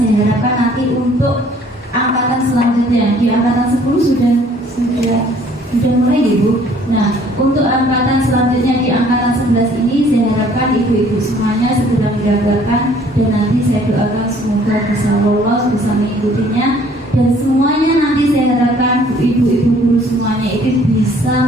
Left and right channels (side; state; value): both; normal; correlation 0.58